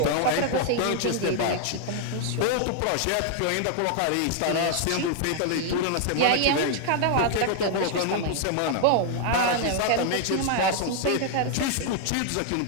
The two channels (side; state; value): both; different; correlation 0.00